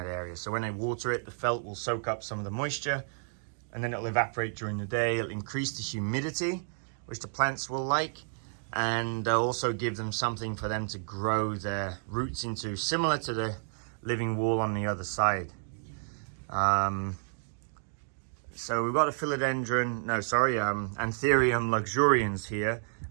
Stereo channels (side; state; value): left; silent; 57 dB below the other